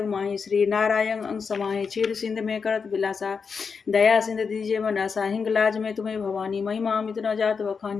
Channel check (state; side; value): quieter; right; 5.6 dB